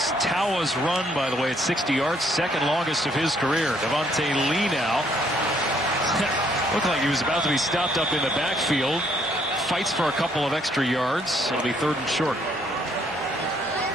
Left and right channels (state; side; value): normal; both; correlation 0.67